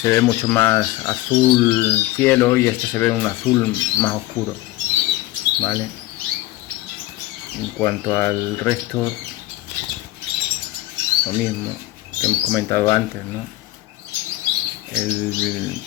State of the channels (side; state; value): right; quieter; 17.2 dB